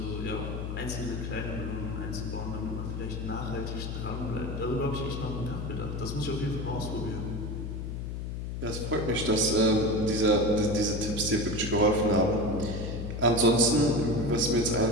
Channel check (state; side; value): noise; left; hum, 5 dB below the sound